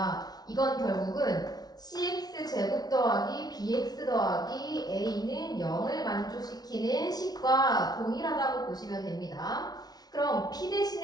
이건 결국은 cx 제곱 더하기 bx 더하기 a는 0을 만족시키는 식과 동일하다고 보시면 됩니다. 그럼 p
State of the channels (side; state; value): right; late; 0.19 ms